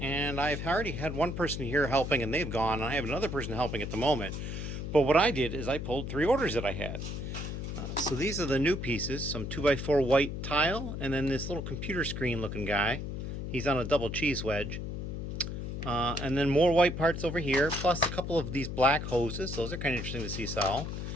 I've already had one person here helping, and they've gone, and I have another person helping at the moment. But what I did is I pulled 3 orders that I had. So these are the new pieces, some 2x4 white tile, and then this little computer screen looking guy. He's on a double cheese wedge. And then more white parts over here, plus a couple of these black hoses. Those are kind of interesting to see sell.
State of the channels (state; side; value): noise; left; hum, 5 dB below the sound